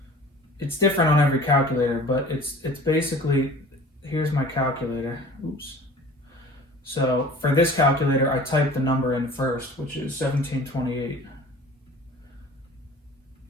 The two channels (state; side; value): normal; both; correlation 0.44